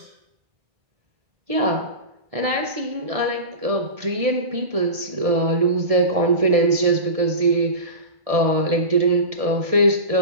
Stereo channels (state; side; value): late; left; 1.7 ms